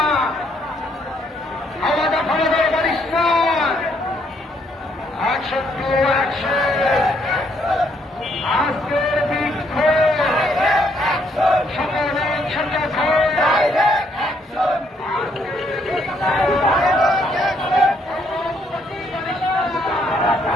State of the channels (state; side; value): normal; both; correlation 0.70